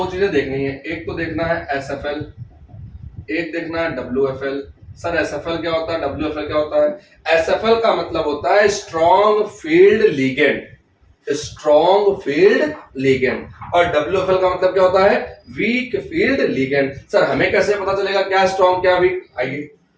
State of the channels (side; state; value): both; identical; correlation 1.00